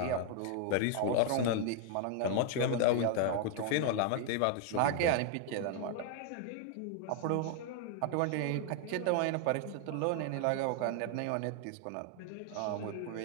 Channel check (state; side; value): different; both; correlation 0.00